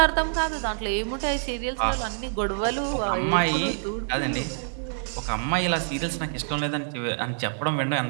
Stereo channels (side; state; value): left; silent; digital silence